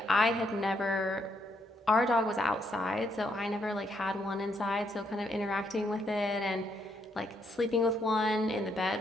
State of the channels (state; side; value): normal; both; correlation 0.75